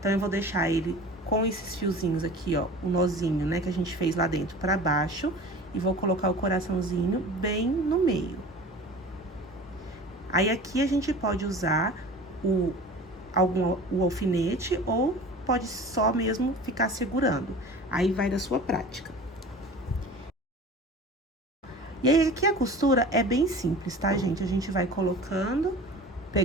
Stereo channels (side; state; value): both; normal; correlation 0.40